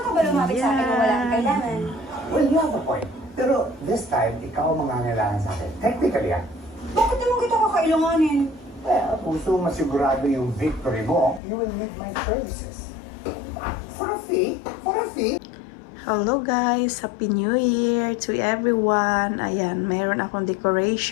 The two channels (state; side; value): drops out; right; at 11.4 s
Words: ba lumapit sa akin kung wala kang kailangan? Well, you have a point. Pero this time, ikaw ang mangangailangan sa akin. Technically, Bakit naman kita kakailanganin? well, kung gusto masigurado yung victory mo, you will need my services. For a fee? For a fee? Hello guys! Happy New Year to everyone! Ayan, mayroon akong